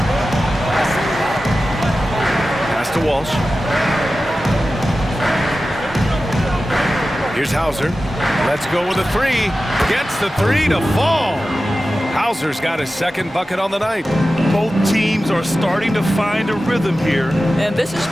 Pass to Walsh. Here's Hauser. Let's go with a 3. Gets the 3 to fall. Hauser's got his second bucket on the night. Both teams are starting to find a rhythm here. And this is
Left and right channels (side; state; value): both; normal; correlation 0.94